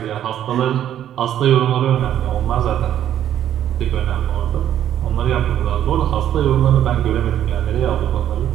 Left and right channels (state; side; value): quieter; left; 10.9 dB